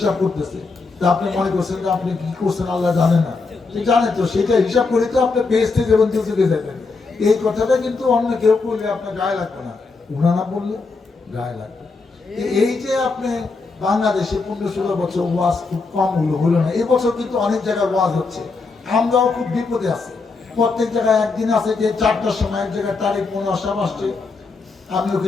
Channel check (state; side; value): quieter; right; 4.1 dB